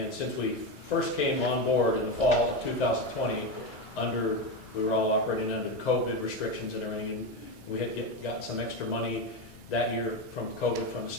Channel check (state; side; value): normal; both; correlation 0.14